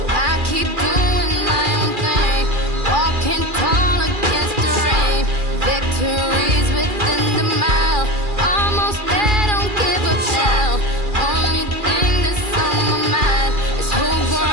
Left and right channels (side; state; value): left; late; 2.4 ms